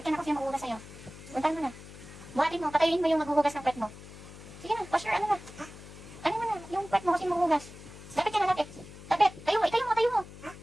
ka na kung sino maghuhugas sa'yo. Puntahan mo na. Buhatin mo, patayin mo yung maghuhugas ng pet mo. Sige na, wash your ano na. Ano mo na, yung pet mo kasi maghuhugas. Lapit ka na, lapit. Lapit, tayo mo. Tayo.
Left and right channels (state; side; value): noise; left; hum, 16 dB below the sound